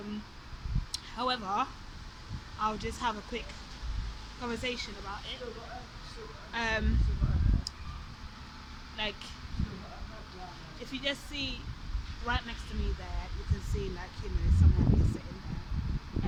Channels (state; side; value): identical; both; correlation 1.00